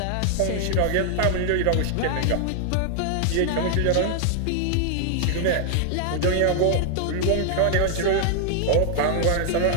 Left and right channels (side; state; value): both; different; correlation 0.00